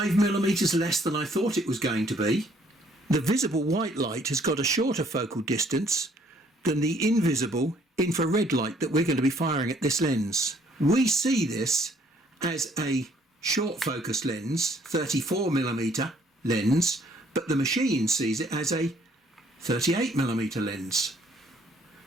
millimeters less than I thought it was going to be. The visible white light has got a shorter focal distance than the invisible infrared light that we're going to be firing at this lens. We see this as a short focus lens, 34 millimeter lens, but the machine sees it as a 38 millimeter lens.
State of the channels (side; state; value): both; normal; correlation 0.63